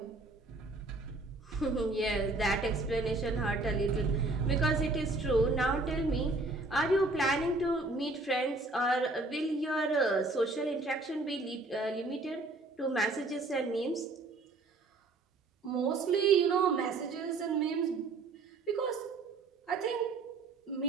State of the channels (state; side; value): quieter; left; 3.3 dB